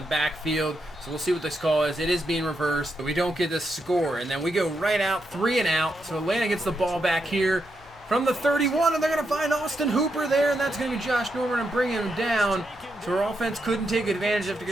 backfield. So we'll see what this call is. It is being reversed, but we don't get the score. And then we go right out, 3 and out. So Atlanta gets the ball back here from the 31, and they're going to find Austin Hooper there, and that's going to be Josh Norman and bring him down. So our offense couldn't take advantage after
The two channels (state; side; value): normal; both; correlation 0.83